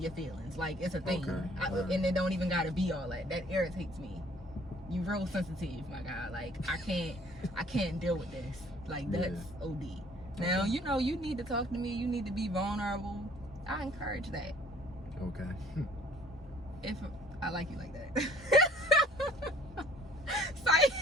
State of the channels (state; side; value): normal; both; correlation 0.56